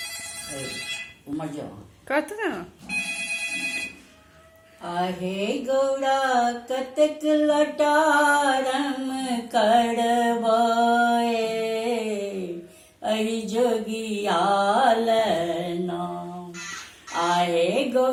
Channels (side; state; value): both; identical; correlation 1.00